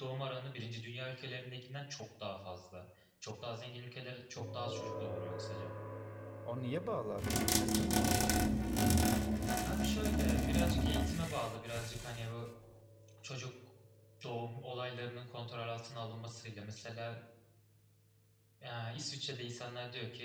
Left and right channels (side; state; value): both; identical; correlation 1.00